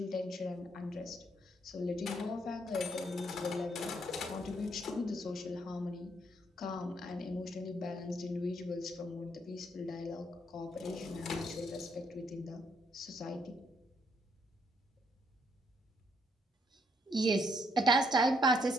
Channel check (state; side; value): normal; both; correlation 0.72